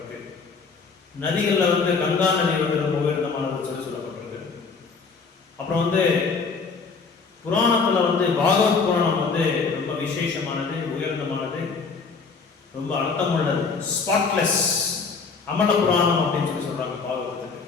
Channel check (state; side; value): quieter; right; 4.9 dB